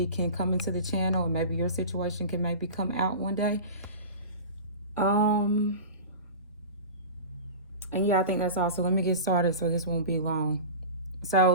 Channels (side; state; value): both; inverted; correlation -0.32